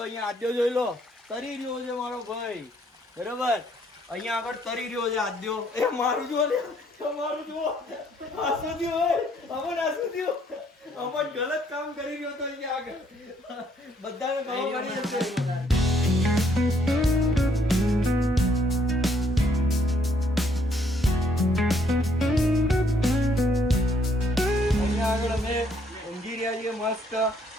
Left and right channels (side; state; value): both; normal; correlation 0.67